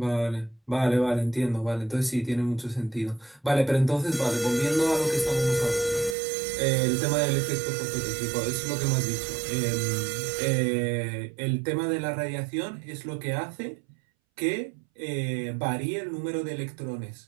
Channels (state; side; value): drops out; left; at 6.2 s